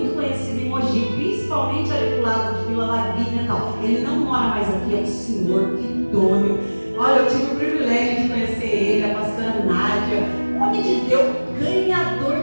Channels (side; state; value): both; inverted; correlation -1.00